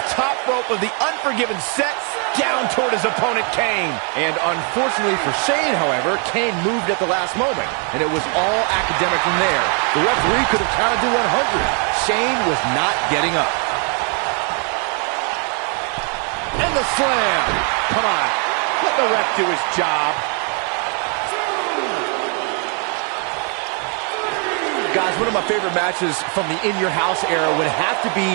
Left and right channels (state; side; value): quieter; left; 38.8 dB